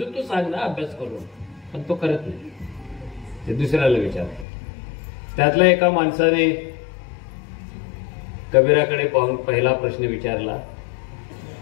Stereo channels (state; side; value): drops out; right; at 4.5 s